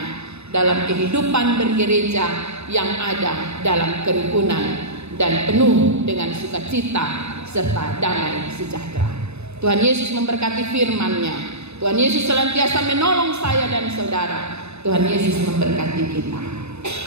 dalam kehidupan bergereja yang ada dalam kerukunan dan penuh dengan sukacita serta damai sejahtera. Tuhan Yesus memberkati firman-Nya. Tuhan Yesus senantiasa menolong saya dan saudara. Tuhan Yesus memberkati kita.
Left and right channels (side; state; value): left; late; 0.80 ms